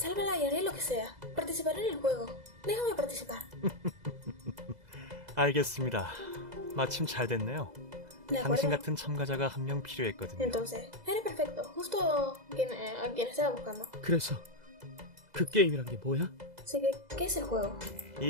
y haré lo que sea. Participaré en el juego. Déjame participar. 알겠습니다. 마침 잘 됐네요. ¿De 당신 acuerdo? 같은 참가자가 한 명 필요했거든요. Entonces, eres perfecto. Justo a quien estaba buscando. 그래서 그 게임이란 게 뭐야? Así que, ¿qué es el juego?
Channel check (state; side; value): late; left; 2.0 ms